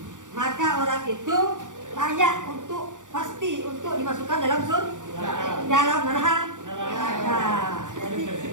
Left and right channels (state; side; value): late; left; 0.87 ms